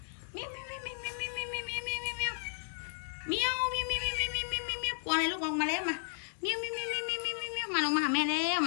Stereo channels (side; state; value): right; silent; digital silence